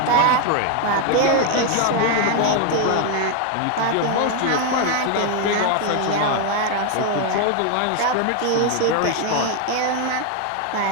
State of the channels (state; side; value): different; both; correlation 0.01